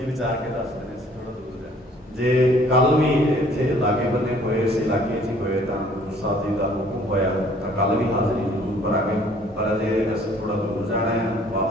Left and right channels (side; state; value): both; normal; correlation 0.57